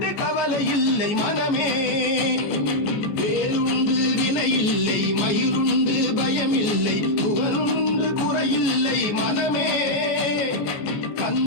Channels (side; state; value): right; late; 14 ms